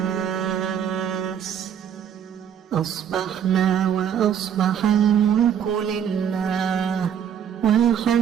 أصبحنا وأصبح الملك لله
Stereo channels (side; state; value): left; quieter; 8.8 dB